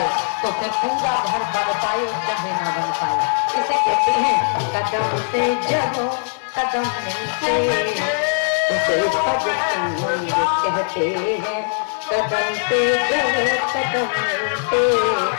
तो फिर पूरा घर बन पाए चाहे ना बन पाए। इसे कहते हैं कदम से जहो कदम मिलते, उसे भज संग कहते हैं। कदम से जहो कदम मिलते,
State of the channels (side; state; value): right; silent; 66 dB below the other